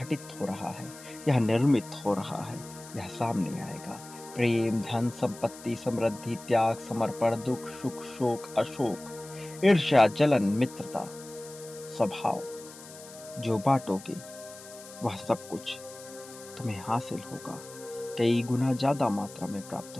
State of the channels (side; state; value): left; noise; hiss, 17 dB below the sound